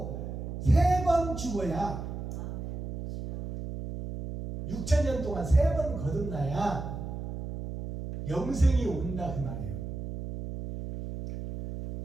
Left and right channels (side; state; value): right; noise; hum, 7 dB below the sound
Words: 3번 죽어야 아멘. 주여. 6,000년 동안 3번 거듭나야 영생이 온다 그 말이에요.